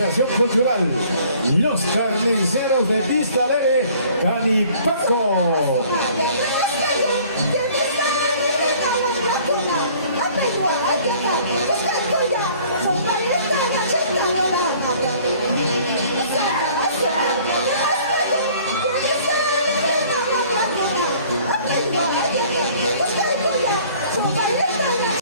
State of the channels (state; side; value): inverted; both; correlation -0.54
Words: Cultural Los Carniceros de Vista Alegre, Canipaco.